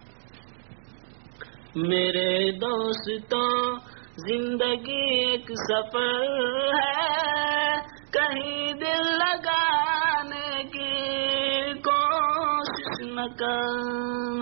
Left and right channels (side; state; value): left; silent; digital silence